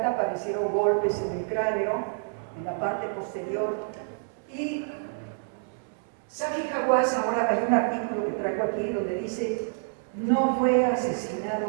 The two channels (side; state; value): left; silent; 59 dB below the other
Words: aparecieron golpes en el cráneo, en la parte posterior, y Zahi Hawass, ahora hay un artículo que traigo aquí donde dice, no fue asesinado